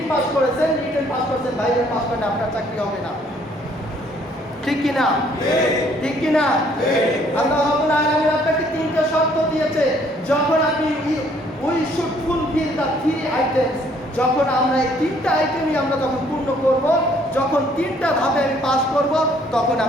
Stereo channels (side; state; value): both; normal; correlation 0.63